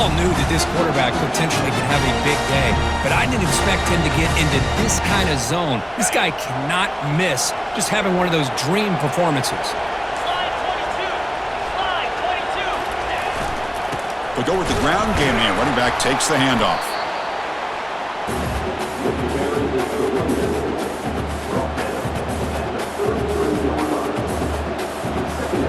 knew that this quarterback potentially could have a big day. But I didn't expect him to get into this kind of zone. This guy cannot miss just having one of those dream performances. We'll go with the ground game here. Running back takes the handoff.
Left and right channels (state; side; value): identical; both; correlation 1.00